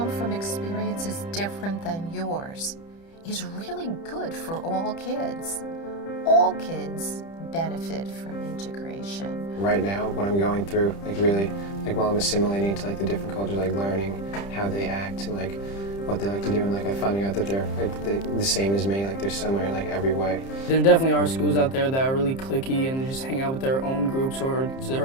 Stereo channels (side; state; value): right; late; 30 ms